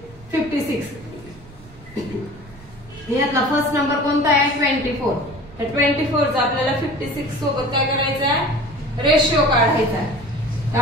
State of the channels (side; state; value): right; noise; rumble, 21 dB below the sound